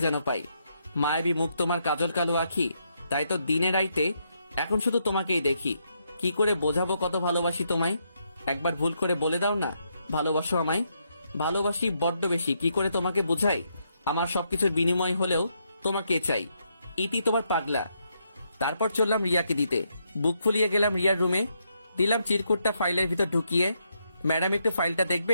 যেন পাই। মায়াবী মুখ, তোমার কাজল কালো আখি, তাই তো দিনে রাইতে এখন শুধু তোমাকেই দেখি। কি করে বোঝাবো কত ভালোবাসি তোমায়? একবার ভুল করে বলে দাও না ভালোবাসো আমায়। ভালোবাসি বড্ড বেশি, কি করে তোমাকে বোঝাই? আমার সবকিছুর বিনিময় হলেও তোমাকে চাই। ইতি তোমার পাগলা। তারপর চললাম রিয়াকে দিতে। বুক ফুলিয়ে গেলাম রিয়ার রুমে। দিলাম চিরকুটটা ফাইলের ভিতর ঢুকিয়ে। ম্যাডাম, একটু ফাইলটা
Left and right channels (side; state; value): both; inverted; correlation -0.78